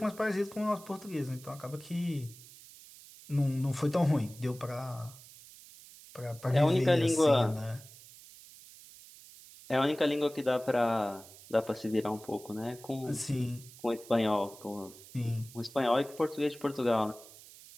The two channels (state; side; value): noise; right; hiss, 19 dB below the sound